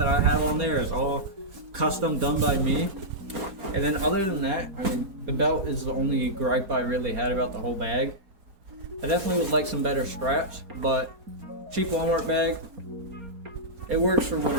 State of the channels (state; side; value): late; left; 4.3 ms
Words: I have on there is all custom done by me. And then other than that, I mean, the belt is the only gripe I really had about the whole bag. I definitely would like some better straps, but cheap Walmart bag, it works for what